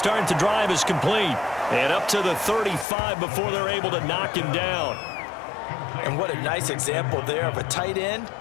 the drive is complete. And up to the 35 before they're able to knock him down. And what a nice example there of a tight end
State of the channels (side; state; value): right; drops out; at 2.9 s